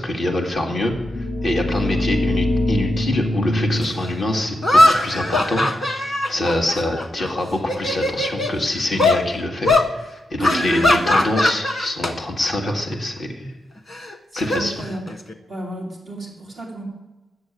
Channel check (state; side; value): normal; both; correlation 0.86